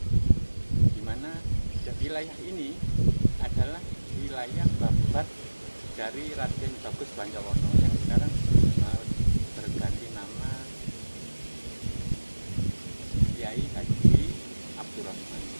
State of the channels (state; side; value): inverted; both; correlation -1.00